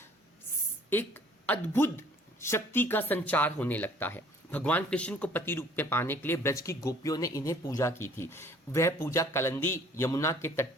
अद्भुत शक्ति का संचार होने लगता है। भगवान कृष्ण को पति रूप में पाने के लिए ब्रज की गोपियों ने इन्हें पूजा की थी। वह पूजा कलंदी यमुना के तट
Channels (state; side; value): normal; both; correlation 0.55